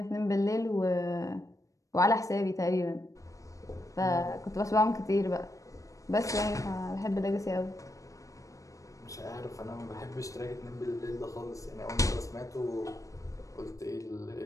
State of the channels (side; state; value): right; late; 0.16 ms